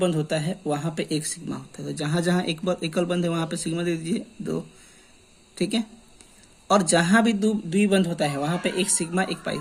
होता है वहां पे एक सिग्मा होता है, तो जहां जहां एकल बंध है वहां पे सिग्मा दे दीजिए 2। ठीक है, और जहां भी द्विबंध होता है वहां पे एक सिग्मा एक पाई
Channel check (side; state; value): both; identical; correlation 1.00